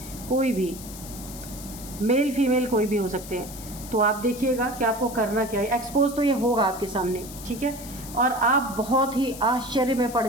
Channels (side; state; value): left; noise; hiss, 14 dB below the sound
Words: कोई भी मेल फीमेल कोई भी हो सकते हैं। तो आप देखिएगा कि आपको करना क्या है। एक्सपोज तो ये होगा आपके सामने, ठीक है, और आप बहुत ही आश्चर्य में पड़